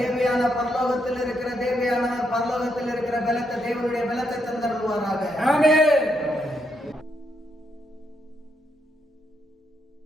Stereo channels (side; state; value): both; normal; correlation 0.78